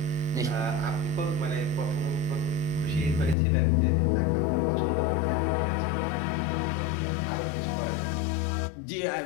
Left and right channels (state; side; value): drops out; right; at 3.4 s